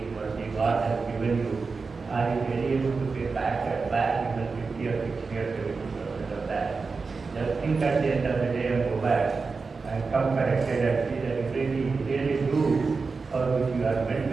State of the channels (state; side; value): quieter; left; 4.5 dB